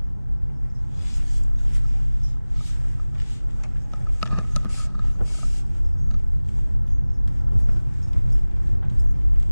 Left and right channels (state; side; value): inverted; both; correlation -0.99